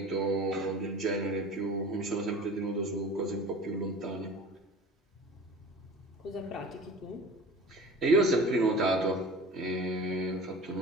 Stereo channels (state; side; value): normal; both; correlation 0.39